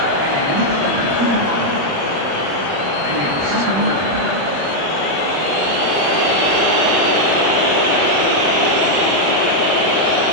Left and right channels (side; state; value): left; late; 1.0 ms